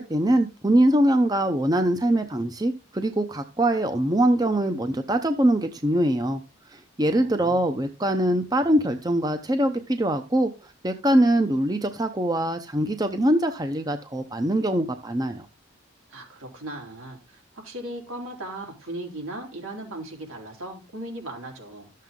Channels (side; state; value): both; normal; correlation 0.80